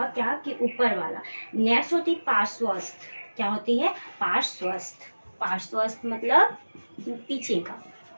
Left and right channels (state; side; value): inverted; both; correlation -1.00